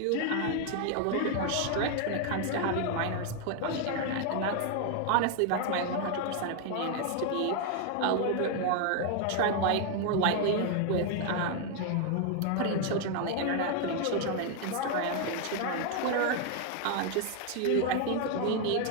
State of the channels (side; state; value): both; different; correlation 0.01